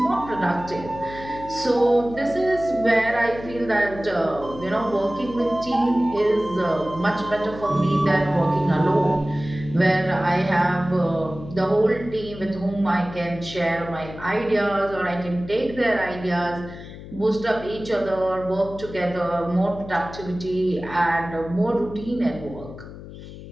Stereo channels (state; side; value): noise; left; hum, 14 dB below the sound